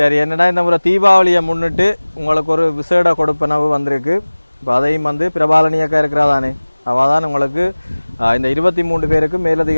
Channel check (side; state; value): both; inverted; correlation -1.00